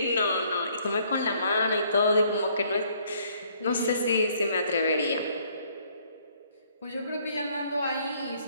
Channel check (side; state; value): both; inverted; correlation -0.64